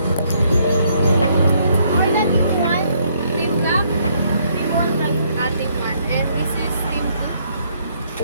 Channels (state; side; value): inverted; both; correlation -0.69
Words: Team Black. Team 1. And this is Team